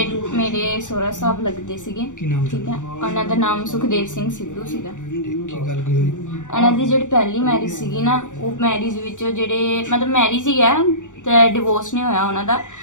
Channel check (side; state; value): right; late; 0.86 ms